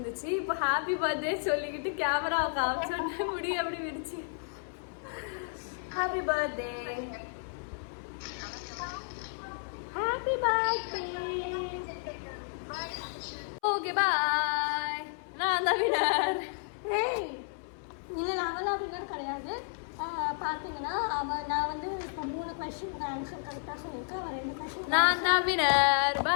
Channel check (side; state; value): right; silent; 56 dB below the other